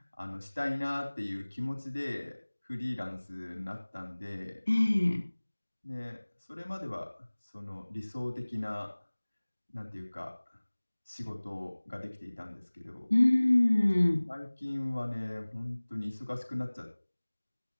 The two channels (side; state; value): both; inverted; correlation -1.00